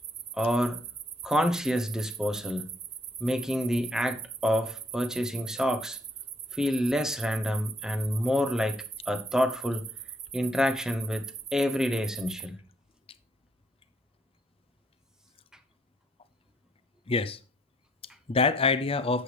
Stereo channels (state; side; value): normal; both; correlation 0.69